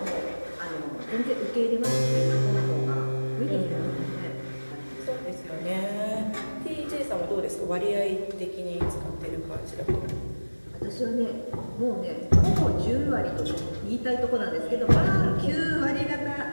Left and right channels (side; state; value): both; inverted; correlation -1.00